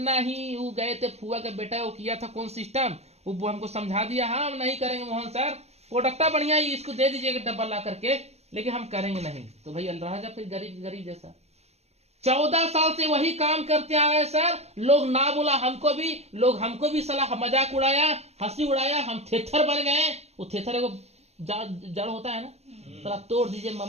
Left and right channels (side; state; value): left; late; 0.31 ms